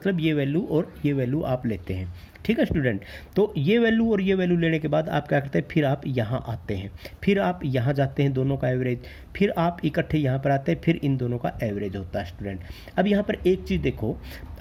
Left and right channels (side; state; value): both; identical; correlation 1.00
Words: ये वैल्यू और ये वैल्यू आप लेते हैं, ठीक है स्टूडेंट। तो ये वैल्यू और ये वैल्यू लेने के बाद आप क्या करते हैं, फिर आप यहाँ आते हैं, फिर आप यहाँ जाते हैं, दोनों का एवरेज, फिर आप इकट्ठे यहाँ पर आते हैं, फिर इन दोनों का एवरेज होता है स्टूडेंट। अब यहाँ पर एक चीज़ देखो,